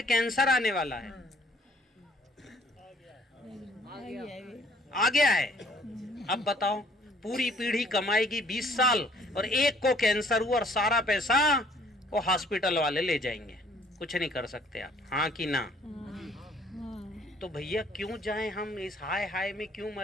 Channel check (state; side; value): normal; both; correlation 0.59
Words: कैंसर आने वाला है, आ गया है। अब बताओ, पूरी पीढ़ी कमाएगी 20 साल और एक को कैंसर हुआ और सारा पैसा वो हॉस्पिटल वाले ले जाएंगे। कुछ नहीं कर सकते आप, हाँ कि ना? तो भैया क्यों जाएं हम इस हाय हाय में, क्यों